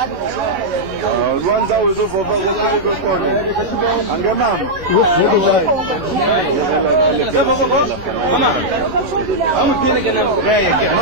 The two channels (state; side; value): late; left; 11 ms